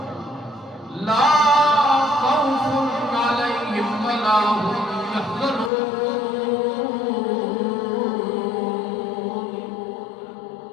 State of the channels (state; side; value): drops out; right; at 5.7 s